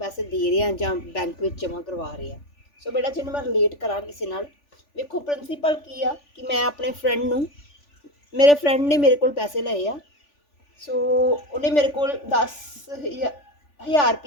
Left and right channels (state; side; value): late; right; 3.4 ms